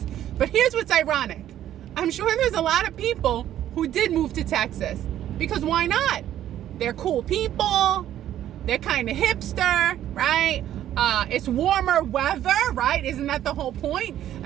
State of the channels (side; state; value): left; quieter; 11.8 dB